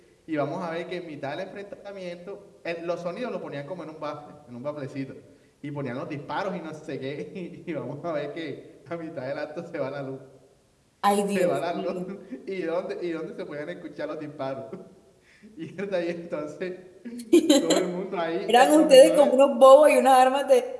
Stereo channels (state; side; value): identical; both; correlation 1.00